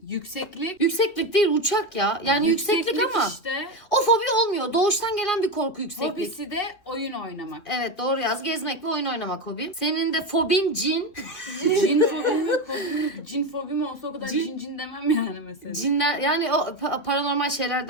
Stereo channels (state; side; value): late; right; 2.9 ms